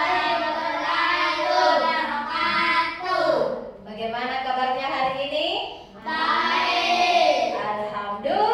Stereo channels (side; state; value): both; identical; correlation 1.00